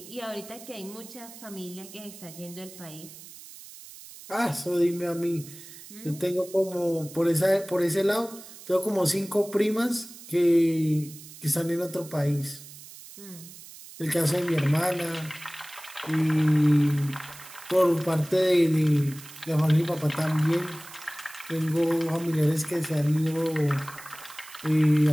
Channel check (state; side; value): noise; right; hiss, 17 dB below the sound